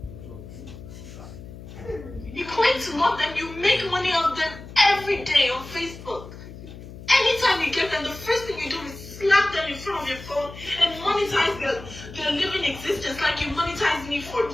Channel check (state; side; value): noise; left; hum, 14 dB below the sound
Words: You claim to love them, you make money off them every day on Facebook. Anytime you get them, the first thing you do is slap them in front of your phone and monetize their living existence like you monetized me for